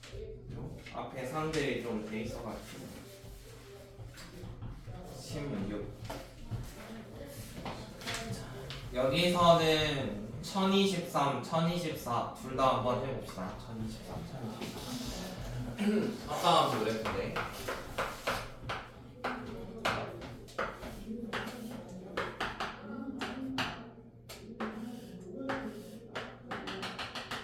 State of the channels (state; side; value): identical; both; correlation 1.00